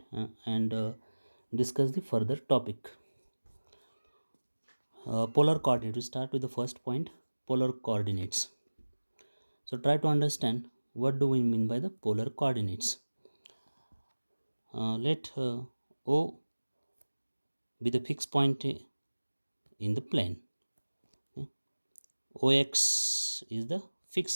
and discuss the further topic. Polar coordinate, we start with the first point, polar coordinates. So try to understand what do we mean by the polar coordinates. Let O be the fixed point in the plane. OX is the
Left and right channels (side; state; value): both; inverted; correlation -1.00